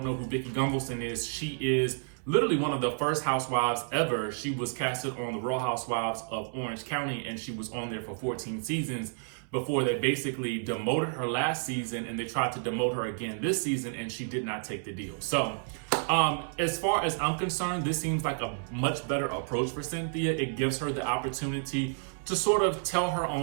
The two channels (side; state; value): left; silent; 57 dB below the other